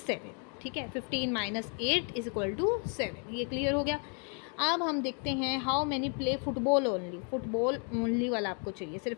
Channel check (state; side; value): quieter; right; 39.8 dB